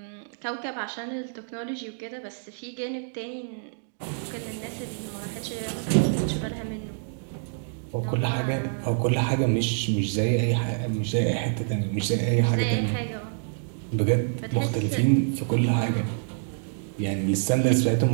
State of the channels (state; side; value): silent; left; digital silence